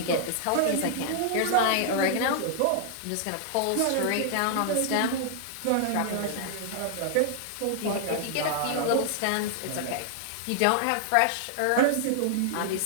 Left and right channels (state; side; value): different; both; correlation -0.01